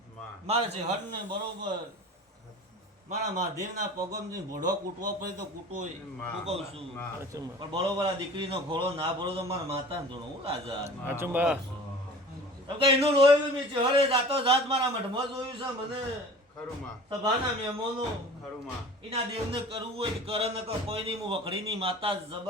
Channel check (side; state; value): both; normal; correlation 0.42